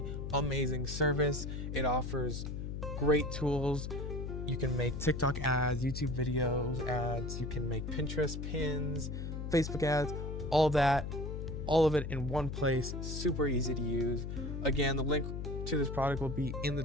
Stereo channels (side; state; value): left; noise; hum, 5 dB below the sound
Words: amazing service. It offers great tools. You can make TikTok ads, YouTube videos ads, you can make Pinterest pins, Facebook ads, all that, all of it in one place. Super easy to use. Again, the link to this product will be in the